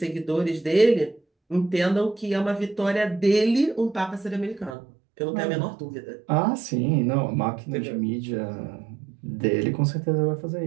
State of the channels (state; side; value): drops out; left; at 4.8 s